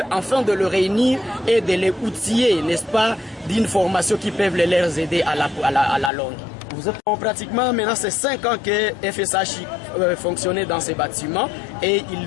afin de le réunir et de les outiller, n'est-ce pas, d'une formation qui peut les aider à la longue. Vous êtes pratiquement maintenant c'est 5 ans que FSH fonctionnait dans ces bâtiments et il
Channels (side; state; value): right; drops out; at 6.1 s